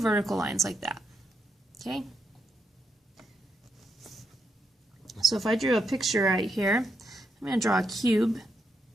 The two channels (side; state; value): both; normal; correlation 0.81